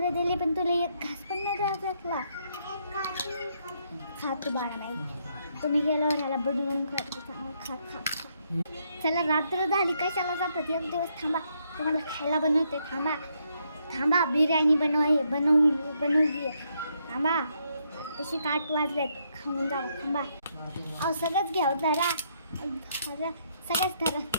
दिले पण तुला एक घास पण नाही द्यायला. खा तू बाळा नाही. तुम्ही गेल्यावर ह्याला बनवून खा. चला रात्र झाली कशाला जातात. एक दिवस थांबा तुम्हाला खायला बनवते. थांबा बिर्याणी बनवली. थांबा तशी 8 वाजलेत. खाऊन जावं. थांबा अहो सगळंच घ्या. धरा सगळंच धरा.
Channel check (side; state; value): both; inverted; correlation -0.75